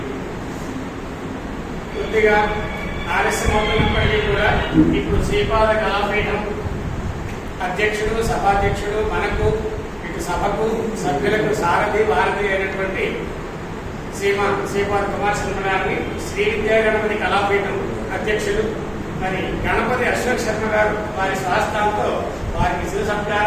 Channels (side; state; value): both; identical; correlation 1.00